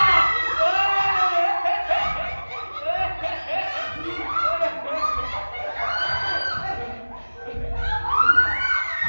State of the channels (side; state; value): both; inverted; correlation -1.00